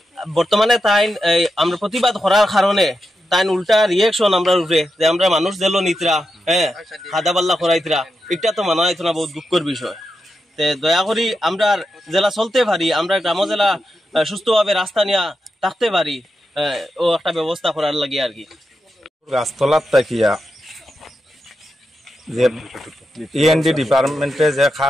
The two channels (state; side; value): normal; both; correlation 0.88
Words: বর্তমানে তাই আমরা প্রতিবাদ করার কারণে তাই উল্টা রিয়েকশন আমরা উপরে যে আমরা মানুষ দিল নিতরা, খাদা পাল্লা করাইতরা, এটা তো মানা হইতো না, বহুত দুঃখের বিষয়। তে দয়া করি আমরা জেলা চলতে পারি, আমরা গ্রাম জেলা সুস্থভাবে রাস্তা নিয়ে থাকতে পারি, ও একটা ব্যবস্থা করার লাগে আর কি। গাছতলার তাকিয়া যে ইএনডি ডিপার্টমেন্টে যে